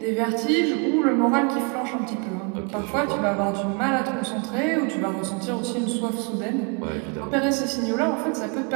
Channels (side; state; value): left; quieter; 33.6 dB